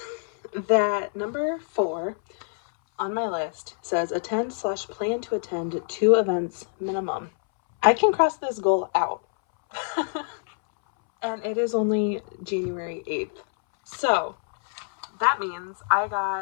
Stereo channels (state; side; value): silent; right; 61 dB below the other